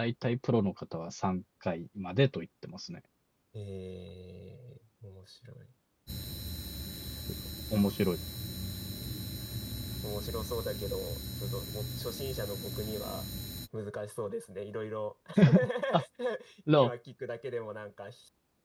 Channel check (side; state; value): both; identical; correlation 1.00